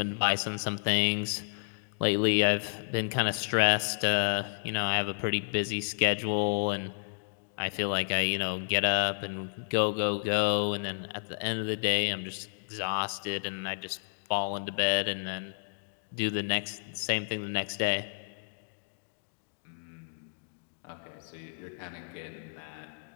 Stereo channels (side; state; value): right; silent; digital silence